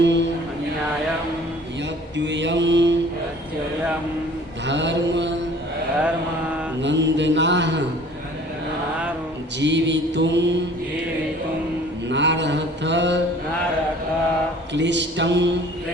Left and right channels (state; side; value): normal; both; correlation 0.50